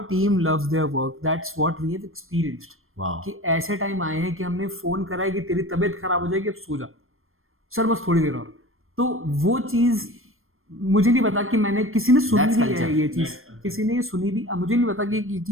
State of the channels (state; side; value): late; left; 0.60 ms